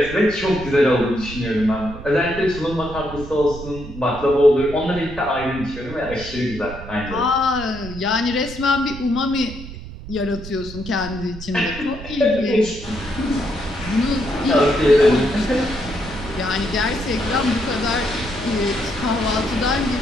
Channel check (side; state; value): right; noise; rumble, 12 dB below the sound